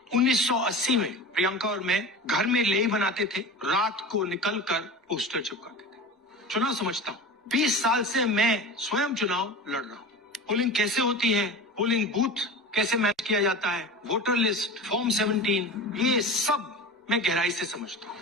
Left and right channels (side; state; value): both; normal; correlation 0.31